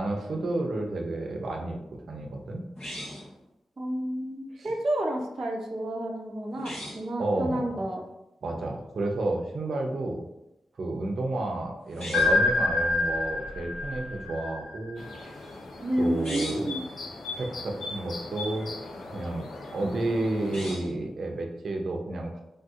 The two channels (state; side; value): normal; both; correlation 0.85